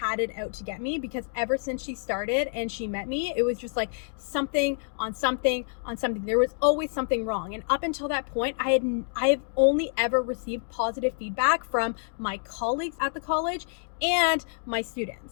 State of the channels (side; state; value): right; silent; digital silence